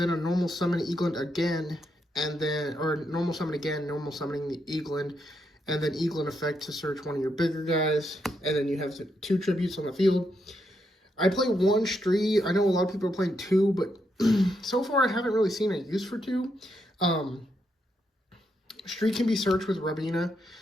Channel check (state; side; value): normal; both; correlation 0.80